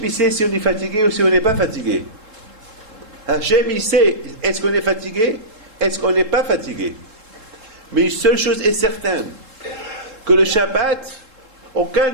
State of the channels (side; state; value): left; late; 3.7 ms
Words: il sait si on est fatigué ou si on n'est pas fatigué. Hachem, il sait, est-ce qu'on est fatigué? Est-ce qu'on n'est pas fatigué? Mais une seule chose est certaine, que le Shabbat, aucun